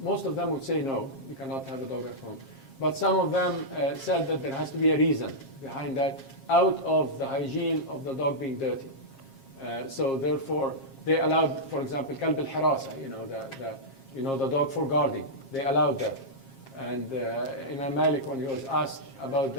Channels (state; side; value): late; right; 7.4 ms